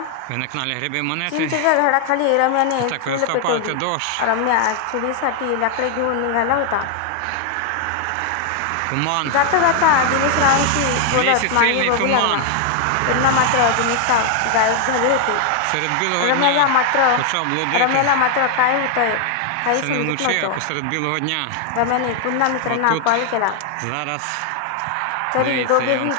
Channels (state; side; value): different; both; correlation 0.00